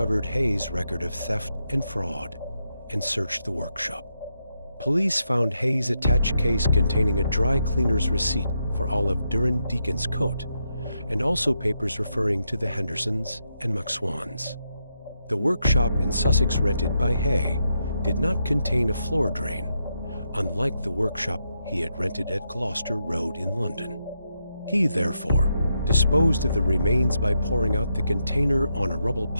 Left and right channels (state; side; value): inverted; both; correlation -0.82